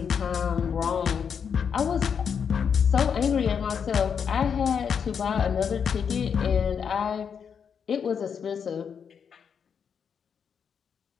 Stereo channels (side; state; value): right; quieter; 7.0 dB